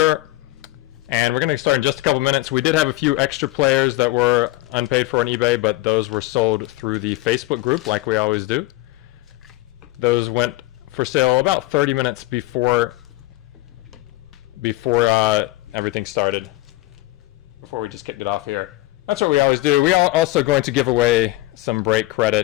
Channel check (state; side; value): quieter; right; 18.2 dB